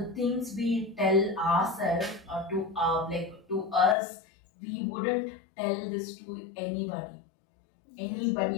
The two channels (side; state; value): right; drops out; at 4.0 s